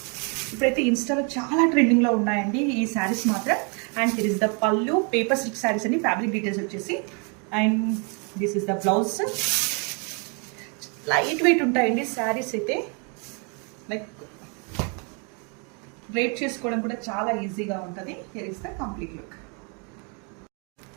ఇప్పుడైతే ఇన్స్టాలో చాలా ట్రెండింగ్లో ఉన్నాయండి ఈ శారీస్ మాత్రం. అండ్ హియర్ ఇస్ ద పళ్ళు, పేపర్ సిల్క్ శారీస్ అండి. ఫ్యాబ్రిక్ డీటెయిల్స్ వచ్చేసి. And this is the blouse. Light weight ఉంటాయండి శారీస్ అయితే. లైక్ డ్రేప్ చేసుకోవడం కూడా చాలా ఈజీగా ఉంటుంది. Here is the complete look.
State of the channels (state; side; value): quieter; left; 35.8 dB